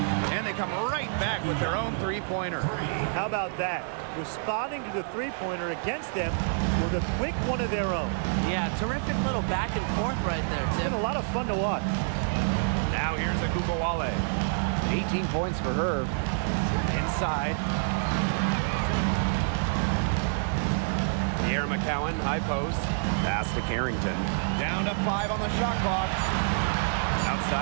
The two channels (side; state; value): left; silent; 58 dB below the other